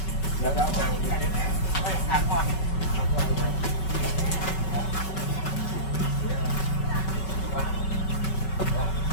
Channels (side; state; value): right; late; 5.3 ms